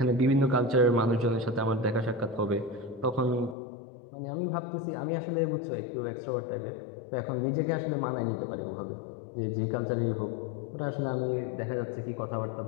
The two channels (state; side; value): drops out; right; at 3.6 s